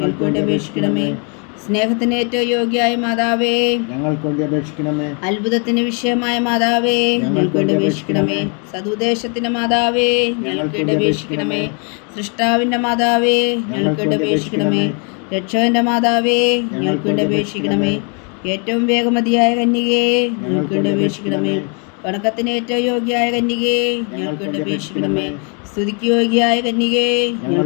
വേണ്ടി അപേക്ഷിക്കണമേ. സ്നേഹത്തിന് ഏറ്റവും യോഗ്യയായ മാതാവേ, ഞങ്ങൾക്ക് വേണ്ടി അപേക്ഷിക്കണമേ. അത്ഭുതത്തിന് വിഷയമായ മാതാവേ, ഞങ്ങൾക്ക് വേണ്ടി അപേക്ഷിക്കണമേ. സതുദ്ദേശത്തിന്റെ മാതാവേ, ഞങ്ങൾക്ക് വേണ്ടി അപേക്ഷിക്കണമേ. സൃഷ്ടാവിന്റെ മാതാവേ, ഞങ്ങൾക്ക് വേണ്ടി അപേക്ഷിക്കണമേ. രക്ഷകന്റെ മാതാവേ, ഞങ്ങൾക്ക് വേണ്ടി അപേക്ഷിക്കണമേ. ഏറ്റവും വേഗമതിയായ കന്യകയെ, ഞങ്ങൾക്ക് വേണ്ടി അപേക്ഷിക്കണമേ. വണക്കത്തിന് ഏറ്റവും യോഗ്യയായ കന്യകേ, ഞങ്ങൾക്ക് വേണ്ടി അപേക്ഷിക്കണമേ. സ്തുതിക്ക് യോഗ്യയായ കന്യകേ,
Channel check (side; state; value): right; quieter; 37.5 dB